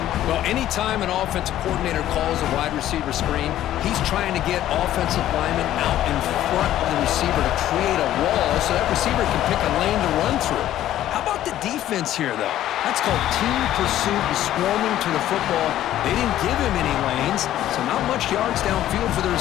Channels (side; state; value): right; quieter; 12.8 dB